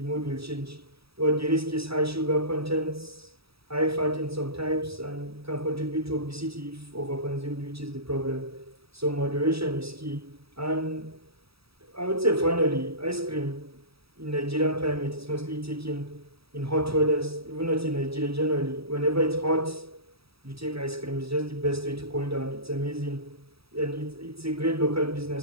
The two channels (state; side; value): late; left; 0.77 ms